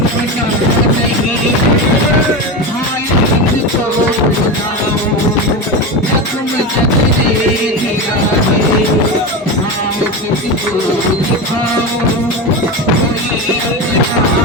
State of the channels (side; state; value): both; normal; correlation 0.20